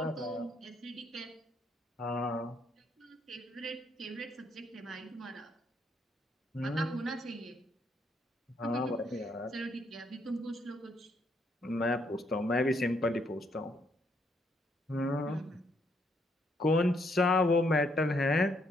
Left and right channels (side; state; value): both; normal; correlation 0.73